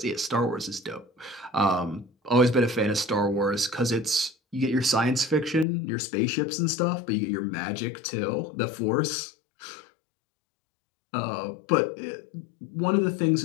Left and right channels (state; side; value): drops out; right; at 5.7 s